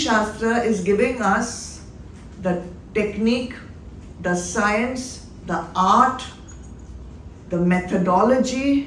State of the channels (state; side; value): identical; both; correlation 1.00